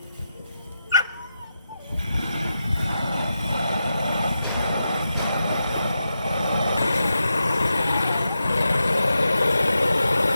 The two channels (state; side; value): inverted; both; correlation -0.88